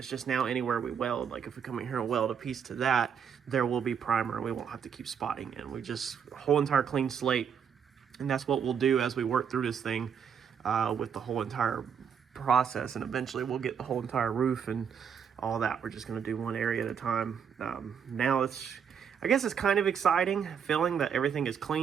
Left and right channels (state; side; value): quieter; left; 7.5 dB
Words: just now anywhere we weld, like if we come in here and weld a piece to that, there will be primer and we won't have to keep spotting it. We just whole entire clean slate. And that's what we'll do as we work through this thing with the whole entire process. And eventually we'll get the whole entire roof and all that. We're just gonna do one area at a time. Now I guess it's kind of exciting feeling that everything is